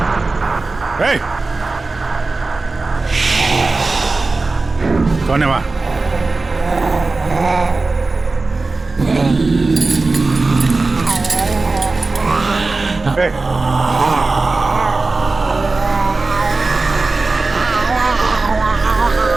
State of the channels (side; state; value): left; quieter; 3.6 dB